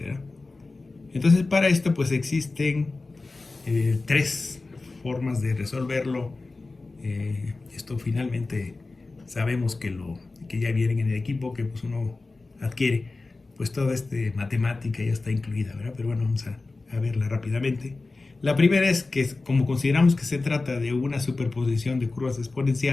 ¿verdad? Entonces para esto pues existen tres formas de resolverlo. Esto finalmente sabemos que ya vienen en el equipo, que pues uno adquiere, pues toda esta matemática ya está incluida, ¿verdad? Pero bueno, vamos a verla rápidamente. La primera es que, como consideramos que se trata de una superposición de curvas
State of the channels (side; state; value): right; quieter; 3.5 dB